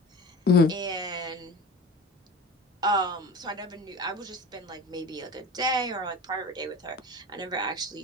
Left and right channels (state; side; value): normal; both; correlation 0.34